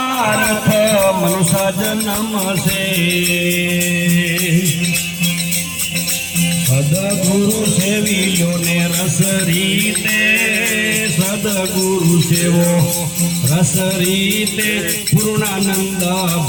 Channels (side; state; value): both; identical; correlation 1.00